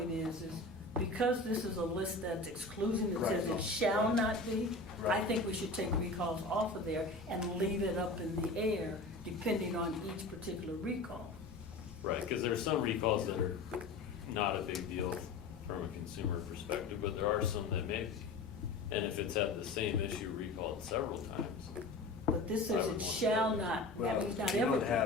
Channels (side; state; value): right; quieter; 3.3 dB